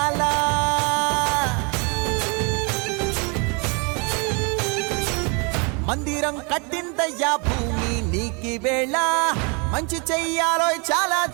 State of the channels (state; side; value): quieter; left; 33.0 dB